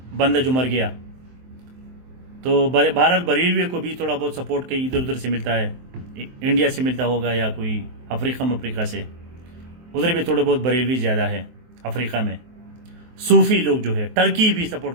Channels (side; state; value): left; late; 23 ms